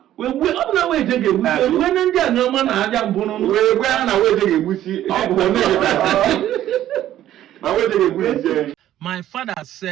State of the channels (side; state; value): left; quieter; 12.5 dB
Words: Wewe ọ na weje ga-egbusi we ndị a ọma na aja mbụ no. Wewe na weje ga-egbusi ọ bụ na weje ga-egbusi. My father